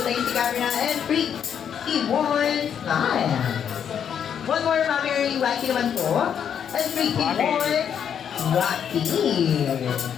tayo si camera and 3, 2, 1, smile. One more, Mami Early, wacky naman po. And 3, 2, 1, wacky.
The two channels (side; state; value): right; quieter; 8.3 dB